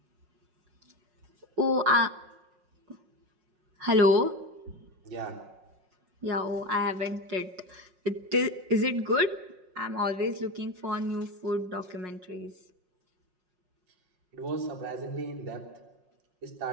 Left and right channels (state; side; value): late; left; 5.5 ms